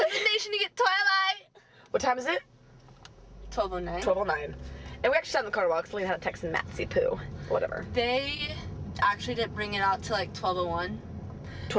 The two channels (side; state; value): both; identical; correlation 1.00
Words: in the nation to get Twilight. What time is it? 12:09. 12:09. And we actually sat in the car while Celine had a text in Matsy Poo. Whatever. They actually didn't bring it out till like 12:01.